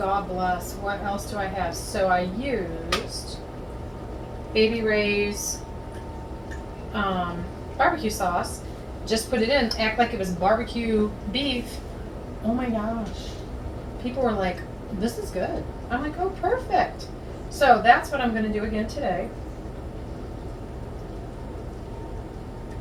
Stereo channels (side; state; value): both; identical; correlation 1.00